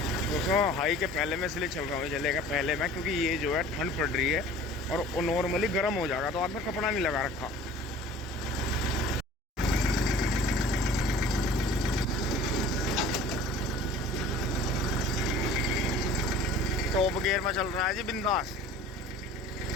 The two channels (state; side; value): normal; both; correlation 0.45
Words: दोस्तों हाई के पहले में इसलिए चल रहा हूँ, जलेगा पहले में, क्योंकि ये जो है ठंड पड़ रही है और वो नॉर्मली गर्म हो जाएगा, तो हाथ में कपड़ा नहीं लगा रखा। टॉप गियर में चल रहा है जी बिंदास।